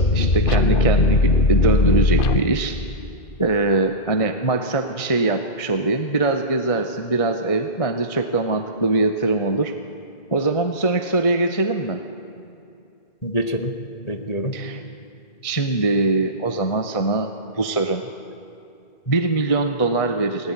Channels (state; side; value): late; right; 1.6 ms